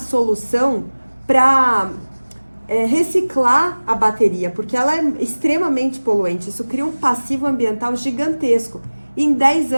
para reciclar a bateria, porque ela é extremamente poluente. Isso cria um passivo ambiental gigantesco. Em 10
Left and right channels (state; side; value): inverted; both; correlation -1.00